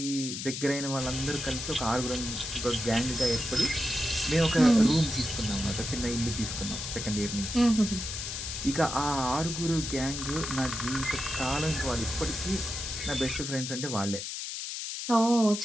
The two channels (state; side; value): noise; left; hiss, 5 dB below the sound